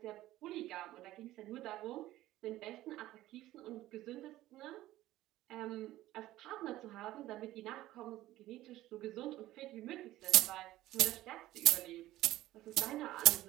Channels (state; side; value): quieter; left; 15.5 dB